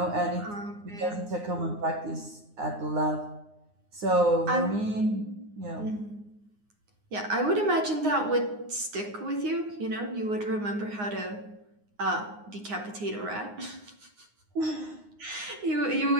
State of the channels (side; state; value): left; late; 9.6 ms